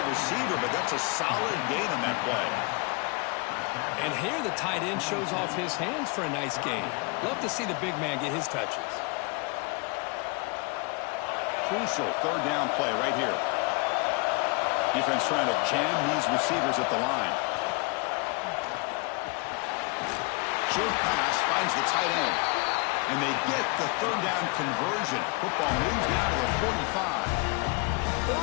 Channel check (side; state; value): right; quieter; 29.7 dB